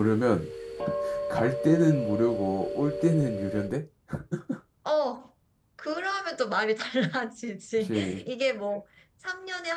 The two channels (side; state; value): both; identical; correlation 1.00